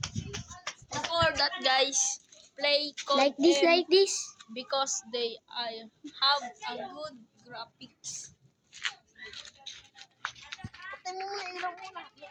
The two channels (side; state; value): both; identical; correlation 1.00